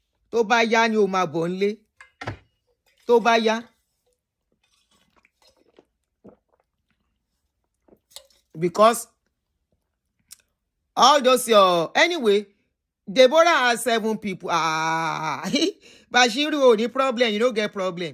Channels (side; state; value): both; identical; correlation 1.00